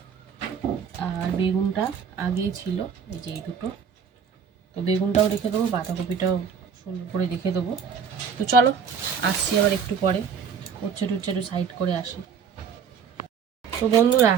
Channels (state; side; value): quieter; left; 6.9 dB